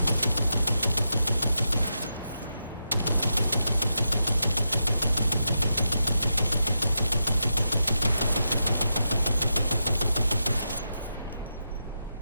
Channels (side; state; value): both; inverted; correlation -0.86